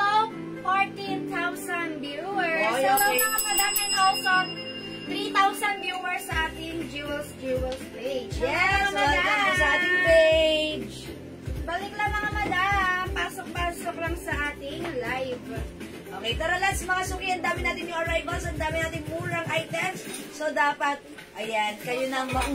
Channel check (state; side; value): identical; both; correlation 1.00